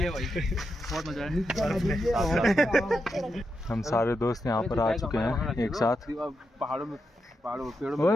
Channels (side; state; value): both; normal; correlation 0.85